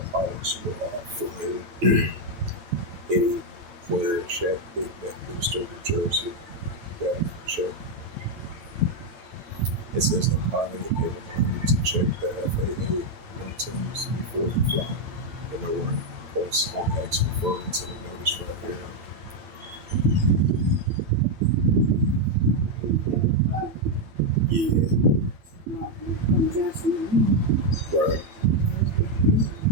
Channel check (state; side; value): late; left; 9.1 ms